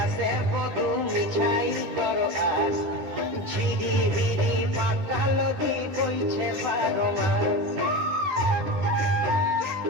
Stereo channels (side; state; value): left; late; 10 ms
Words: বধু মিছাই করো আস ঝিরি হিরি পাতা নদী বইছে 12 মাস